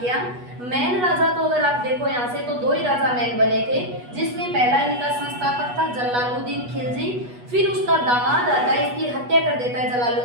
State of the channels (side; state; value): left; late; 8.2 ms